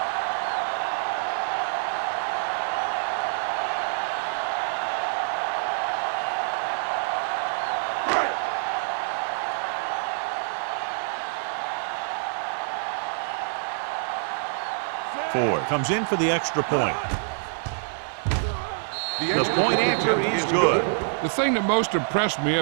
Ford comes in for the extra point. The point after is good. The thing that most impressed me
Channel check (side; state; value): left; silent; 57 dB below the other